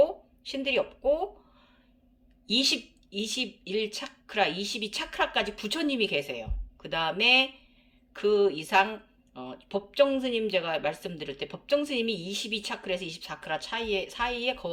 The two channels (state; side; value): identical; both; correlation 1.00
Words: 신들이 없고 21차크라, 22차크라까지 부처님이 계세요. 그 다음에 그 이상 법정스님 제가 말씀드릴 때 법정스님이 22차크라에서 24차크라 사이에